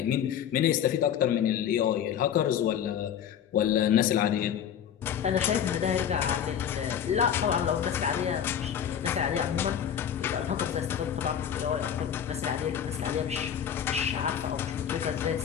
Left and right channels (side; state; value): right; quieter; 9.1 dB